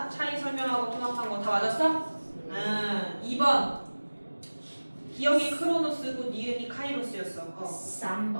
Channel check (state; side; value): inverted; both; correlation -1.00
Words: 차이 설명하고 통합한 거 다 맞았어? 2번 기억이 크로노스고 니은이 카이로스였어.